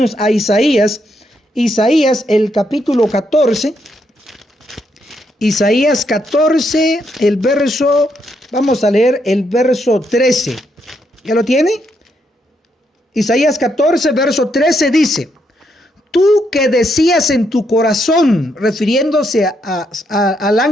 a Isaías, el capítulo 14. Isaías 14, vamos a leer el verso 13. ¿Ya lo tiene? Isaías 14, verso 13 dice: tú que decías en tu corazón, refiriéndose al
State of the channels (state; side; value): normal; both; correlation 0.77